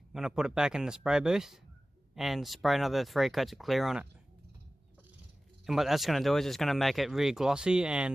going to put it back in the spray booth and spray another 3 coats of clear on it. And what that's going to do is it's going to make it really glossy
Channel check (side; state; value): both; normal; correlation 0.96